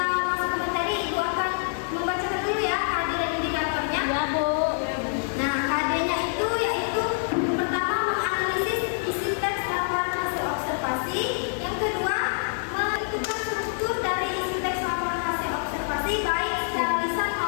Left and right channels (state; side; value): silent; right; digital silence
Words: masuk ke materi, Ibu akan membacakan dulu ya kehadiran indikatornya. Ya, Bu. Nah, KD-nya itu yaitu yang pertama menganalisis isi teks laporan hasil observasi, yang kedua menentukan struktur dari isi teks laporan hasil observasi baik secara lisan